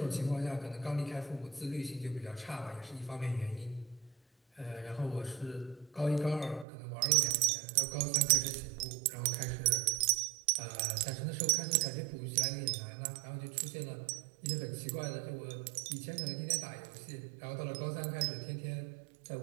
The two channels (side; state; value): left; drops out; at 6.7 s